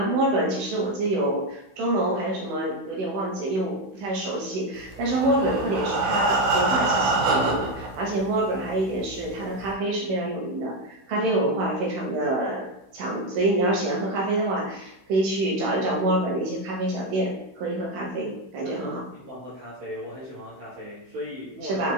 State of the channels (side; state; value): left; late; 16 ms